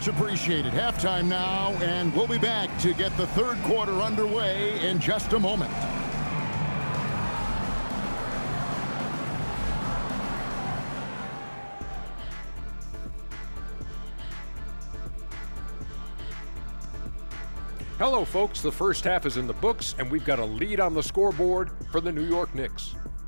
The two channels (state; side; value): inverted; both; correlation -1.00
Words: appreciated. Halftime now, and we'll be back to get the third quarter underway in just a moment. Hello, folks. The first half is in the books, and we've got a lead on the scoreboard for the New York Knicks.